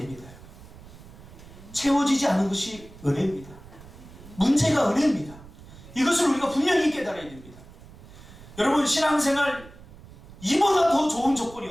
채워지지 않은 것이 은혜입니다. 문제가 은혜입니다. 이것을 우리가 분명히 깨달아야 됩니다. 여러분, 신앙생활 이보다 더 좋은 조건이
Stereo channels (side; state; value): right; noise; rumble, 19 dB below the sound